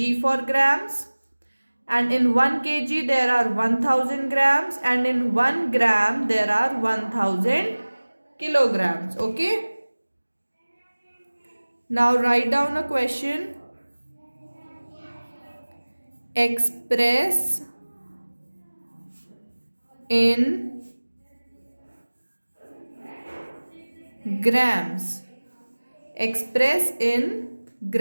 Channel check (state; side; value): inverted; both; correlation -1.00